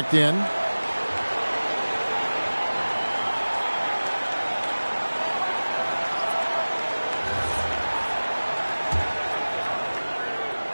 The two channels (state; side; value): inverted; both; correlation -1.00